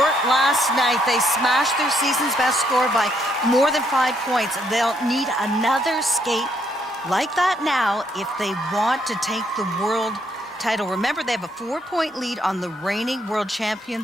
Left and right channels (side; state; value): both; normal; correlation 0.72